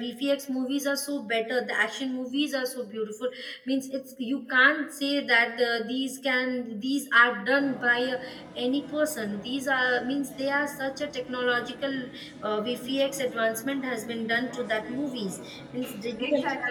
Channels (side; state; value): both; identical; correlation 1.00